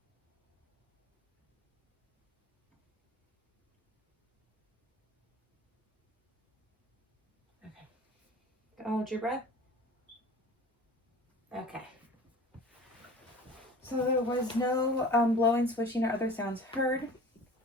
Okay. Go hold your breath. Okay. So there was no blowing, swishing, or other sounds heard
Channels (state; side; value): normal; both; correlation 0.42